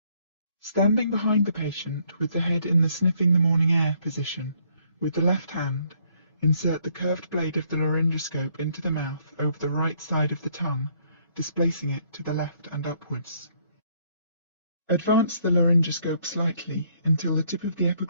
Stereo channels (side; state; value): both; inverted; correlation -0.68